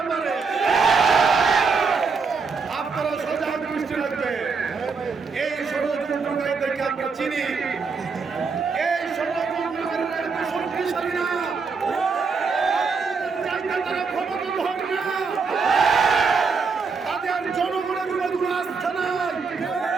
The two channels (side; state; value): left; quieter; 5.0 dB